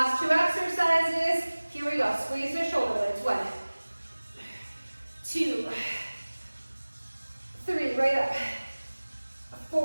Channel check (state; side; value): inverted; both; correlation -1.00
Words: 2 exercises. Here we go. Squeeze the shoulder blades. 1, 2, 3. Right up.